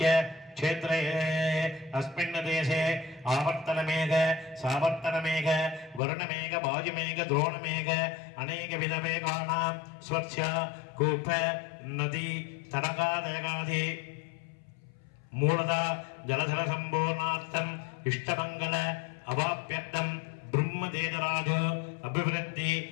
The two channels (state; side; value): drops out; right; at 6.0 s